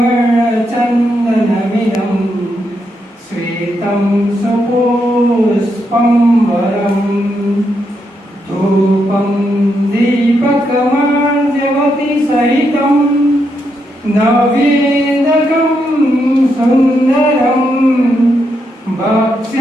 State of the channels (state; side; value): normal; both; correlation 0.81